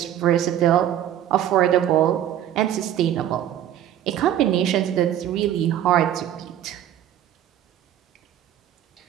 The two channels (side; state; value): left; quieter; 11.1 dB